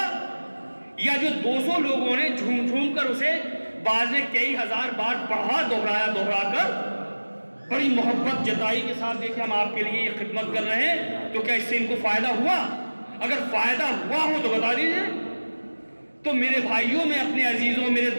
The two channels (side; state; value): both; inverted; correlation -1.00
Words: یا جو 200 لوگوں نے جھوم کر اسے بعض نے کئی ہزار بار پڑھا دوہرا کر بڑی محبت جتائی کے ساتھ, دیکھیں ہم آپ کے لیے یہ خدمت کر رہے ہیں, تو کیا اس سے ان کو فائدہ ہوا؟ اگر فائدہ ہوا ہو تو بتا دیجیے. تو میرے بھائیوں, میں اپنے عزیزوں, میرے